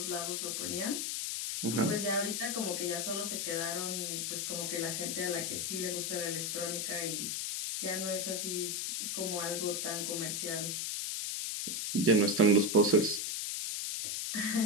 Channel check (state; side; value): noise; left; hiss, 1 dB below the sound